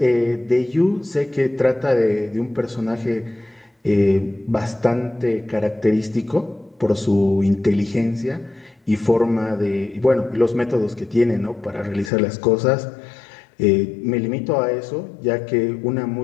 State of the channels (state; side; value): drops out; right; at 12.1 s